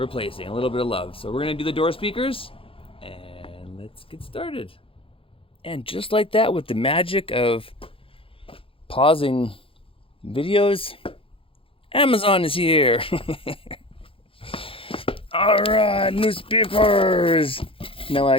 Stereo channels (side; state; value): right; late; 0.26 ms